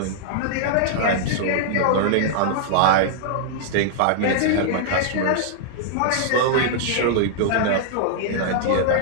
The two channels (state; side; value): different; both; correlation -0.01